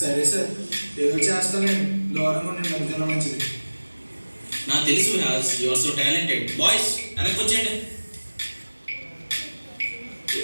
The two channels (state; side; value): inverted; both; correlation -1.00